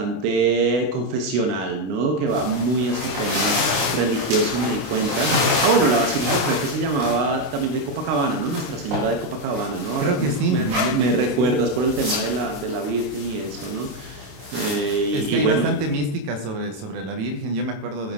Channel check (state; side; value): late; left; 26 ms